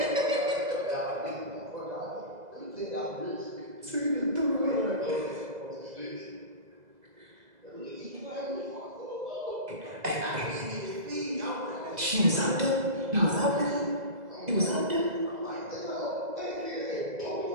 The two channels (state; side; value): late; left; 2.0 ms